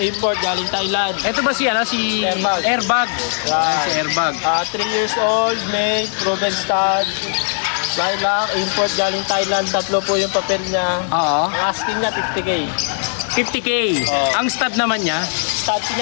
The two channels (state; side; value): silent; right; 58 dB below the other